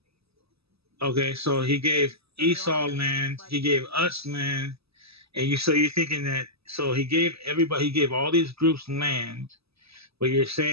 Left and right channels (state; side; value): late; left; 0.78 ms